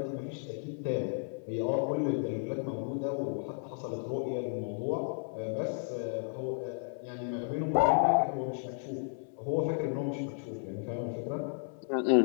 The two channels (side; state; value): right; silent; 56 dB below the other